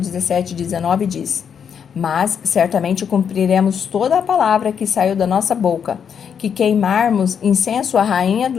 e 19 diz: Mas certamente cumpriremos toda a palavra que saiu da nossa boca, que queimarmos incenso à rainha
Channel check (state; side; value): quieter; right; 7.5 dB